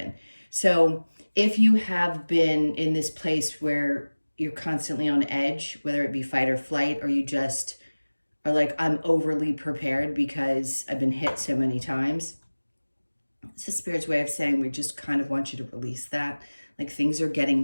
So if you have been in this place where you're constantly on edge, whether it be fight or flight, or you just are like, I'm overly prepared because I've been hit so many times. It's the Spirit's way of saying we just kind of want you to release that. Like, things are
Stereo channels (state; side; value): inverted; both; correlation -1.00